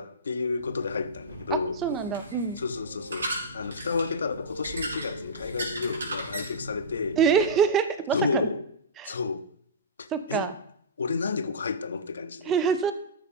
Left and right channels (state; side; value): normal; both; correlation -0.17